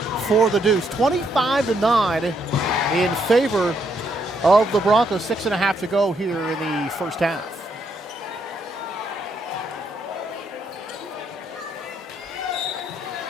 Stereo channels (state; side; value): normal; both; correlation 0.74